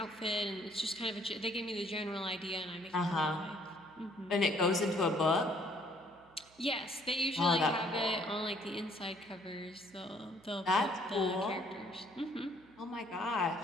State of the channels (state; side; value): noise; right; hum, 29 dB below the sound